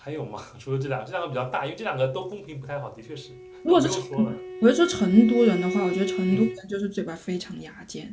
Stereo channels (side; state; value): both; identical; correlation 1.00